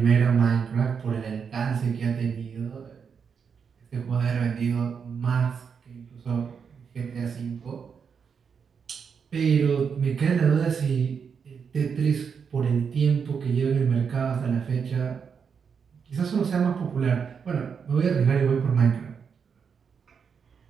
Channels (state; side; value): quieter; left; 6.5 dB